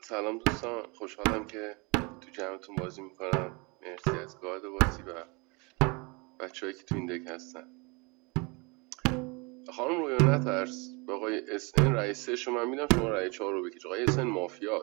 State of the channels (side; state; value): left; quieter; 29.0 dB